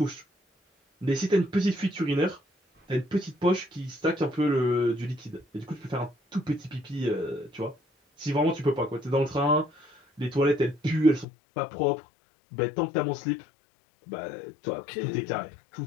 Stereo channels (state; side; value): drops out; right; at 11.2 s